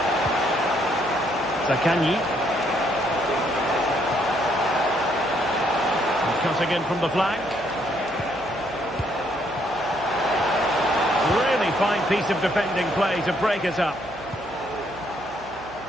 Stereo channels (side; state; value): right; noise; hum, 23 dB below the sound